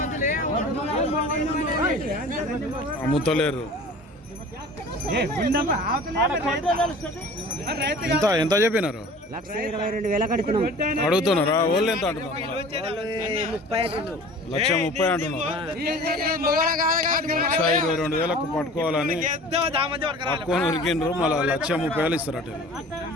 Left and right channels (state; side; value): normal; both; correlation 0.43